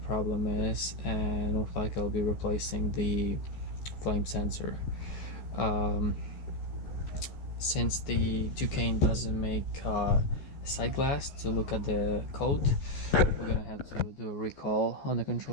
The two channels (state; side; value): late; right; 14 ms